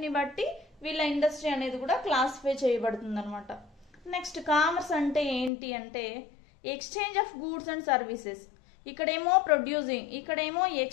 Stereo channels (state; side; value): drops out; right; at 5.5 s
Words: బట్టి వీళ్ళ ఇండస్ట్రీ అనేది కూడా క్లాసిఫై చేయబడుతుంది అనమాట. నెక్స్ట్ కామర్స్ అంటే ఏంటి అంటే exchange of goods and services. ఇక్కడేమో ప్రొడ్యూసింగ్, ఇక్కడేమో